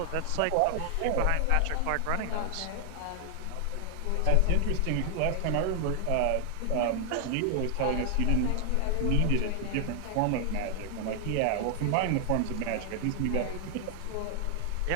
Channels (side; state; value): both; different; correlation 0.00